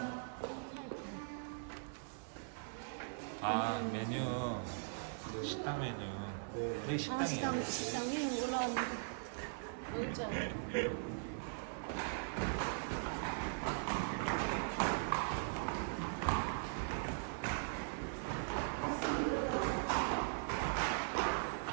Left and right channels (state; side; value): silent; left; digital silence